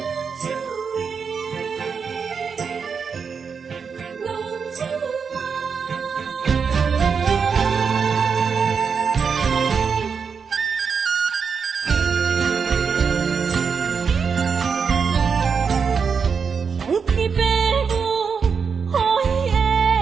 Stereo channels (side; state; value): left; quieter; 6.0 dB